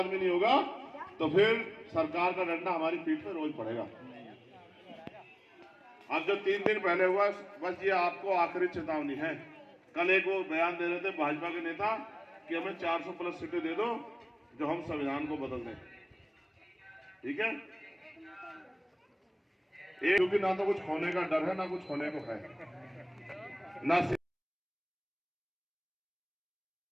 नहीं होगा तो फिर सरकार का डंडा हमारी पीठ पे रोज पड़ेगा। अब जो 3 दिन पहले हुआ, बस ये आपको आखिरी चेतावनी है। कल एक वो बयान दे रहे थे भाजपा के नेता कि हमें 400 प्लस सीटें दे दो जो हम संविधान को बदल दें, ठीक है? क्योंकि ना तो कुछ खोने का डर है, ना कुछ खोने को है, ना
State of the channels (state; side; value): identical; both; correlation 1.00